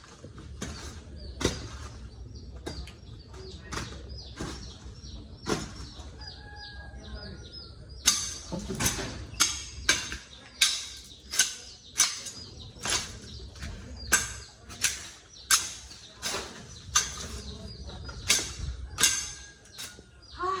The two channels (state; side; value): identical; both; correlation 1.00